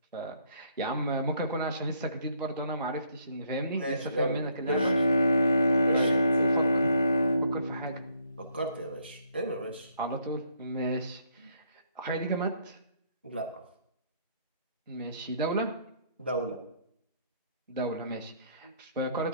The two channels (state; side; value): inverted; both; correlation -0.68